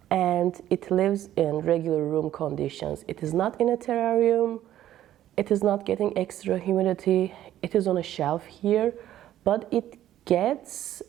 and it lives in regular room conditions. It is not in a terrarium. It is not getting extra humidity. It is on a shelf here, but it gets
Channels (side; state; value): left; quieter; 12.5 dB